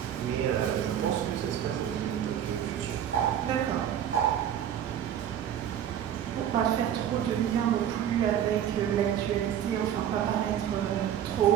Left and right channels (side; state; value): left; quieter; 9.9 dB